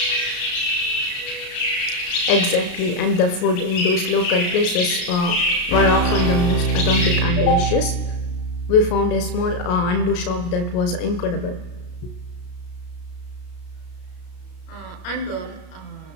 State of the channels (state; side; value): late; right; 33 ms